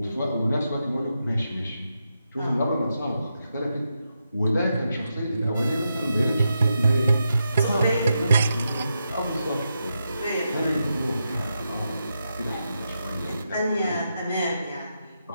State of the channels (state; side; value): inverted; both; correlation -0.86